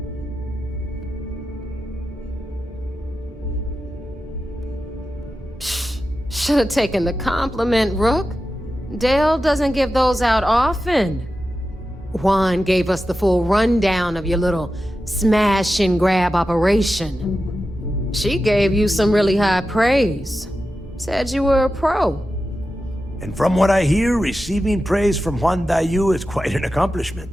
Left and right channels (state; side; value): normal; both; correlation 0.92